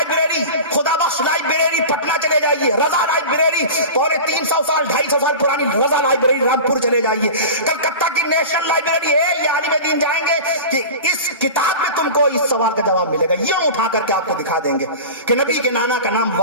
خدا بخش لائبریری پٹنہ چلے جائیے، رضا لائبریری 350 سال 250 سال پرانی رضا لائبریری رامپور چلے جائیے، کلکتہ کی نیشنل لائبریری ہے. یہ عالم دین جائیں گے کہ اس کتاب میں تم کو اس سوال کا جواب ملے گا. یوں اٹھا کر کے آپ کو دکھا دیں گے کہ نبی کے نانا کا نام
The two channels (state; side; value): inverted; both; correlation -0.32